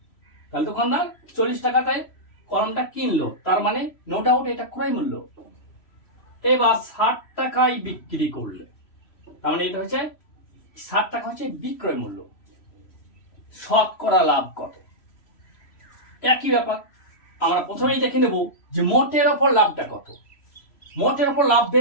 তাহলে দোকানদার 40 টাকাতে কলমটা কিনলো, তার মানে নো ডাউট এটা ক্রয় মূল্য। এবার 60 টাকায় বিক্রি করলে, তার মানে এটা হচ্ছে 60 টাকা হচ্ছে বিক্রয় মূল্য। শতকরা লাভ কত? একই ব্যাপার, আমরা প্রথমেই দেখে নেব যে মোটের ওপর লাভটা কত। মোটের ওপর লাভ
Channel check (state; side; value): late; right; 3.0 ms